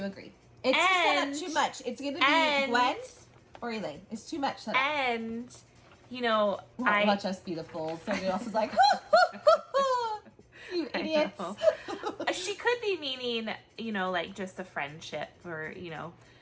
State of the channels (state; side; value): identical; both; correlation 1.00